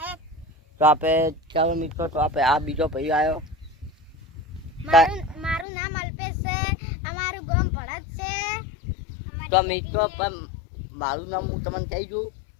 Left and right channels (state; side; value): drops out; right; at 5.7 s